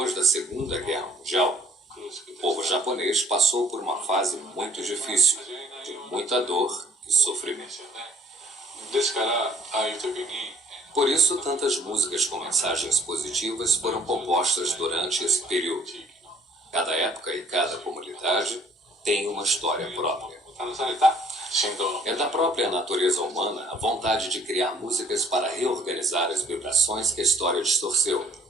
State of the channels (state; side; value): normal; both; correlation 0.58